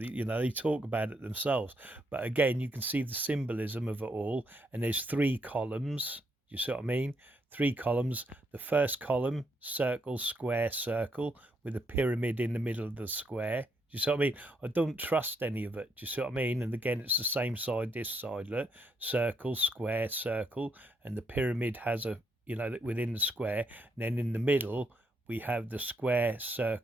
know, they talk about it themselves. But again, you can see the symbolism of it all. And there's 3 columns, you see what I mean? 3 columns. The first column, circle, square, circle, with a pyramid in the middle of the square. Do you see what I mean? I don't trust any of it. Do you see what I mean? And again, it's the same side, this side, look. Circle, square, circle. And the pyramid has a, you know, within the square, and then in the middle we have the square,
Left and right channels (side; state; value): both; normal; correlation 0.76